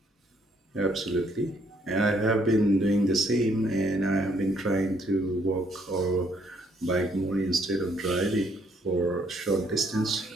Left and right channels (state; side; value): normal; both; correlation 0.68